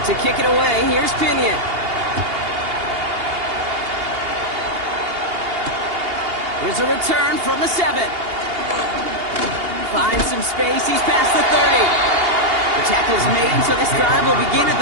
to kick it away, here's Pinion. Here's a return from the 7. Finds some space, he's past the 30. The tackle's made, so this drive will begin at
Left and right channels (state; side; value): late; left; 2.8 ms